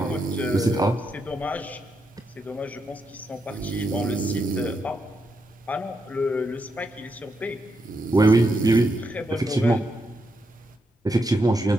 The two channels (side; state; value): both; normal; correlation 0.82